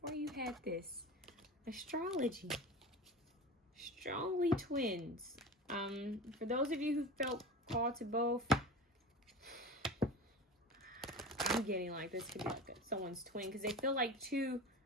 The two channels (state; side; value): normal; both; correlation 0.31